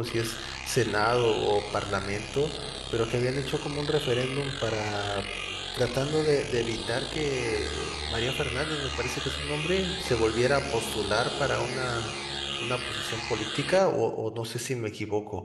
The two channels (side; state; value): both; identical; correlation 1.00